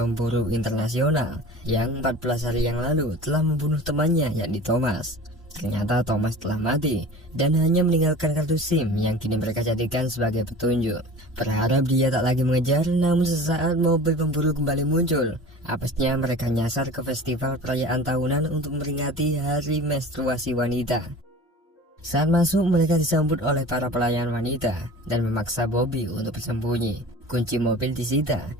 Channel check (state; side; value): normal; both; correlation 0.39